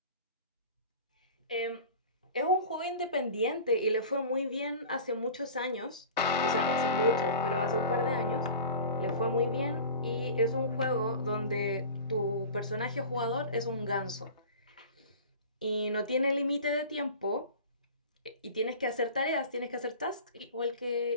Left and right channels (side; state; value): both; inverted; correlation -0.38